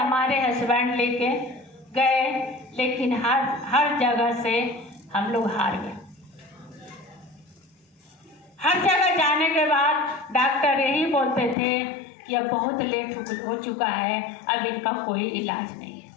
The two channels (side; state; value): right; drops out; at 11.6 s